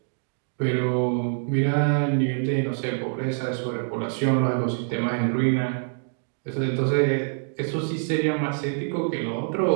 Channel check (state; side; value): silent; left; digital silence